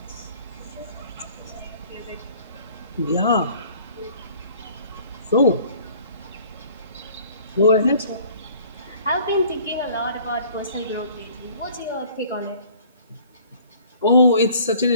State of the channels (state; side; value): inverted; both; correlation -0.53